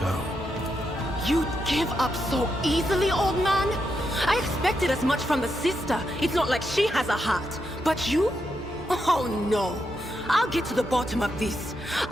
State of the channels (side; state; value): both; normal; correlation 0.83